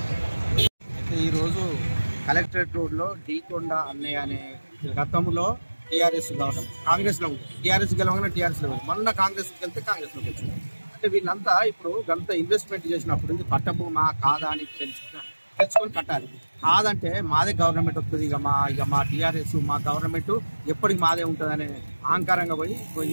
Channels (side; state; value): both; inverted; correlation -1.00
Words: ఈరోజు collectorate రోడ్లో డీకొండ అన్నయ్య అనే గతంలో టీఆర్ఎస్ గెలవడం కాంగ్రెస్లో ఉంది. టీఆర్ఎస్ గెలవగానే టీఆర్ఎస్లో ఉంది. మొన్న కాంగ్రెస్కి వెళ్తే కాంగ్రెస్లోకి వచ్చింది. అంటే వీళ్ళంతా ఇప్పుడు గంత ఇన్వెస్ట్మెంట్ చేసినప్పుడు ఇది పట్టభూమా కాదా అని తెలుసుకొని కట్టాలి. కాదంటే మాదే గవర్నమెంట్ వస్తుంది, ఇక మా టీఆర్ఎస్ మా గవర్నమెంట్ ఎప్పటికి మాదే ఉంటుందనే అహంకారంగా పోయి